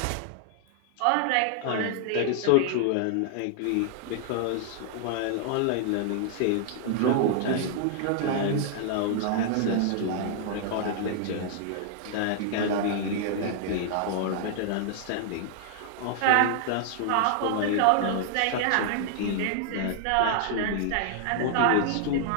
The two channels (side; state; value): both; different; correlation -0.01